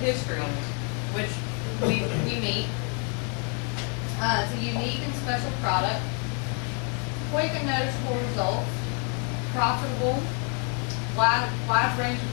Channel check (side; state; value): right; quieter; 38.1 dB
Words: history, which we meet. It's a unique and special product, quick and noticeable results, profitable, wide range of